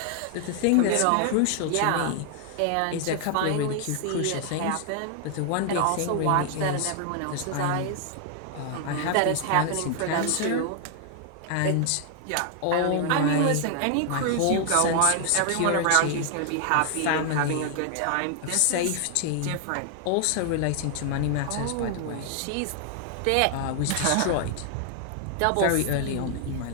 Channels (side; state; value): both; different; correlation 0.00